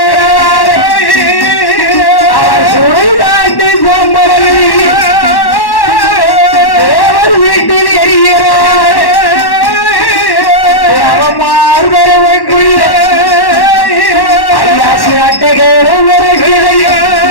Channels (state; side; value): late; right; 1.1 ms